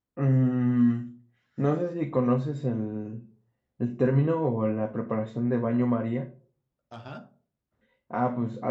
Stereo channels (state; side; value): identical; both; correlation 1.00